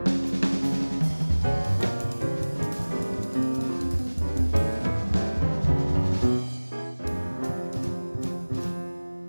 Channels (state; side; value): inverted; both; correlation -1.00